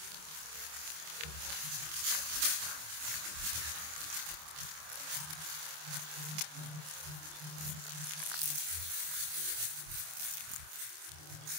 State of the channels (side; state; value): left; late; 26 ms